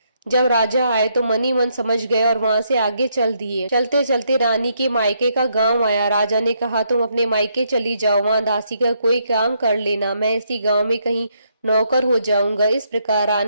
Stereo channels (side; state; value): both; inverted; correlation -0.75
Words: जब राजा आए तो मन ही मन समझ गए और वहां से आगे चल दिए। चलते चलते रानी के मायके का गांव आया। राजा ने कहा, तुम अपने मायके चली जाओ, वहां दासी का कोई काम कर लेना, मैं इसी गांव में कहीं नौकर हो जाऊंगा। इस प्रकार